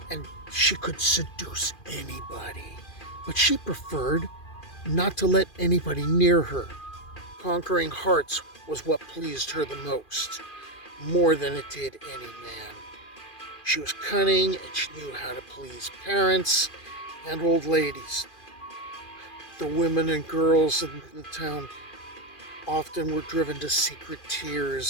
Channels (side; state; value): right; late; 2.4 ms